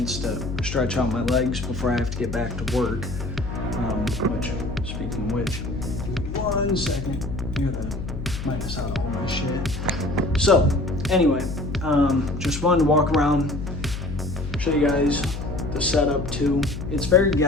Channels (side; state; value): left; noise; hum, 7 dB below the sound